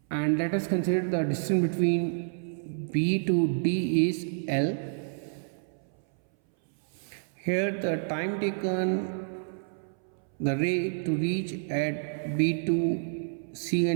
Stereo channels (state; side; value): silent; left; 59 dB below the other